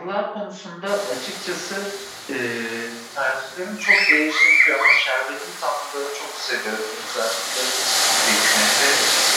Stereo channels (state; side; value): identical; both; correlation 1.00